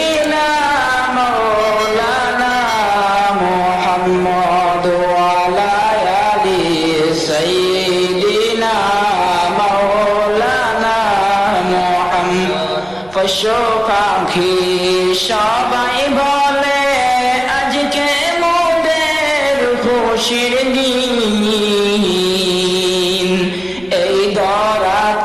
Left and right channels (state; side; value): noise; right; rumble, 25 dB below the sound